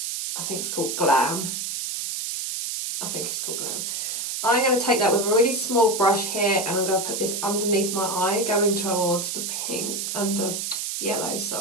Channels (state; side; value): noise; right; hiss, 3 dB below the sound